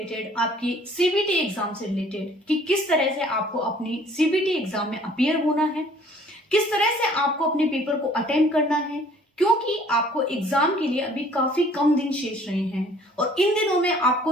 आपकी सीबीटी एग्जाम से रिलेटेड कि किस तरह से आपको अपनी सीबीटी एग्जाम में अपीयर होना है, किस तरह से आपको अपने पेपर को अटेम्प्ट करना है, क्योंकि आपको एग्जाम के लिए अभी काफी कम दिन शेष रहे हैं और इन दिनों में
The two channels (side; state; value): both; normal; correlation 0.55